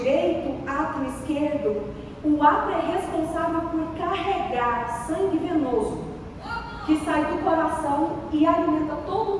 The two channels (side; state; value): both; identical; correlation 1.00